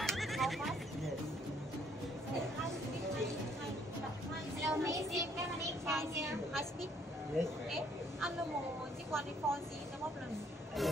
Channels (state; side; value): normal; both; correlation 0.65